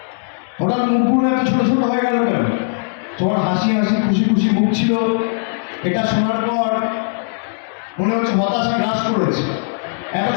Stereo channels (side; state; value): right; silent; digital silence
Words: হঠাৎ মুখগুলো এত ছোট ছোট হয়ে গেল কেন? তোমার হাসি হাসি খুশি খুশি মুখ ছিল, এটা শোনার পর মনে হচ্ছে হতাশা গ্রাস করেছে। এত